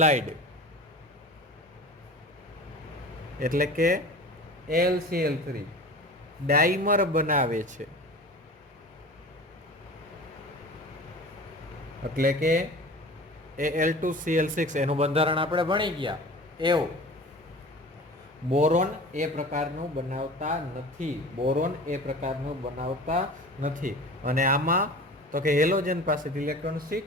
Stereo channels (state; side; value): normal; both; correlation 0.38